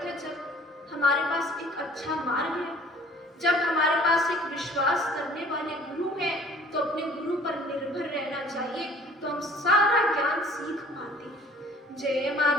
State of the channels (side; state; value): both; normal; correlation 0.52